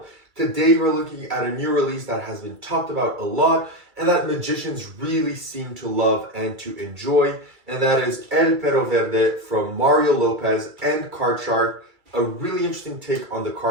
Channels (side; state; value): left; late; 2.3 ms